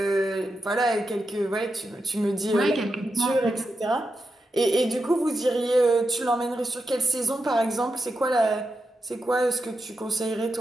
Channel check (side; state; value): both; normal; correlation 0.88